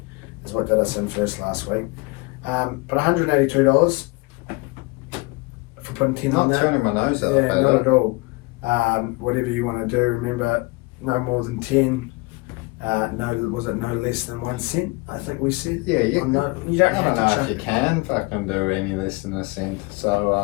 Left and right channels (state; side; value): quieter; right; 25.0 dB